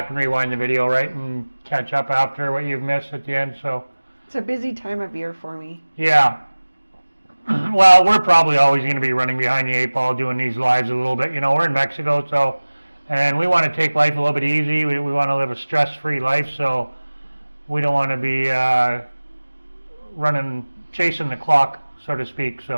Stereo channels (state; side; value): inverted; both; correlation -1.00